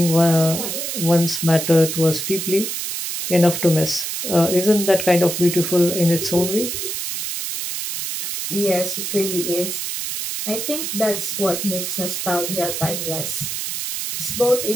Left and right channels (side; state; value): right; noise; hiss, 4 dB below the sound